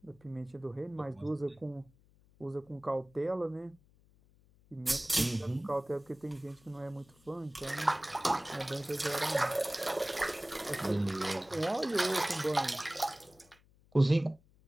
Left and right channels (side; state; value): left; noise; hum, 29 dB below the sound